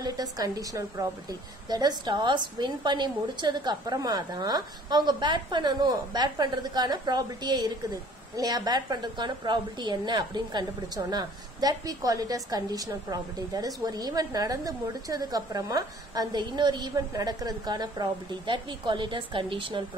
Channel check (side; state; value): both; normal; correlation 0.53